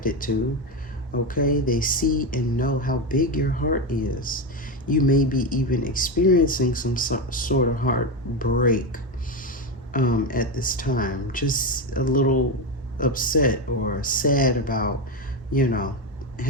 to. Okay, they see and know how big your heart is. You may be even experiencing some sort of heartbreak at this time, just a little upset or sad about, you know,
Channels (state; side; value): normal; both; correlation 0.13